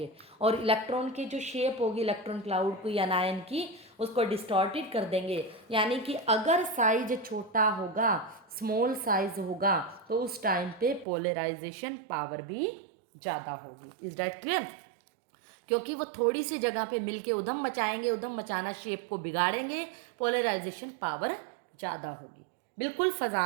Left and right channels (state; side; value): drops out; left; at 11.1 s